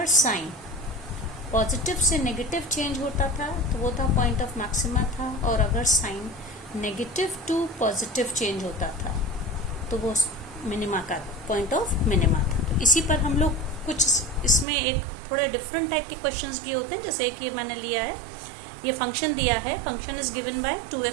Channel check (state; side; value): drops out; left; at 14.7 s